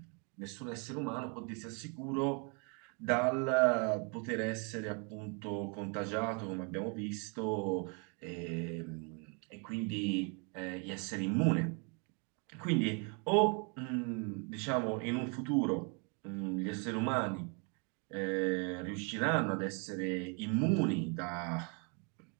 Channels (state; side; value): quieter; left; 35.6 dB